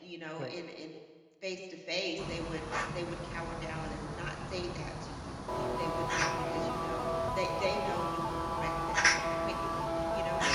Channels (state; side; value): identical; both; correlation 1.00